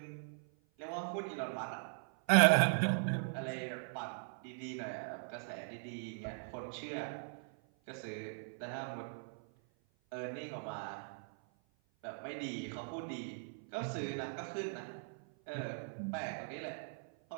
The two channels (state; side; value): silent; left; 51 dB below the other